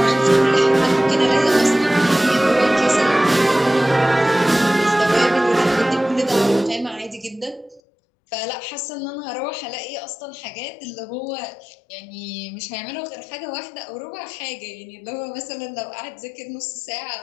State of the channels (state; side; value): drops out; right; at 7.8 s